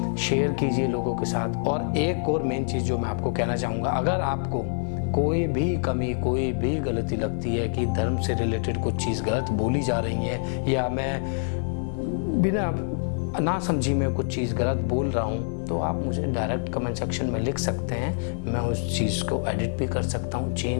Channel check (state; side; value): silent; right; 56 dB below the other